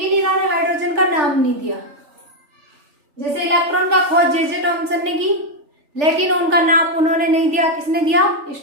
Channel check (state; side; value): late; left; 3.4 ms